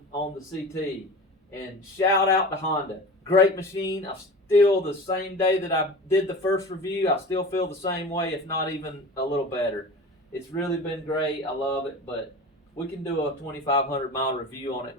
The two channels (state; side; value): normal; both; correlation 0.34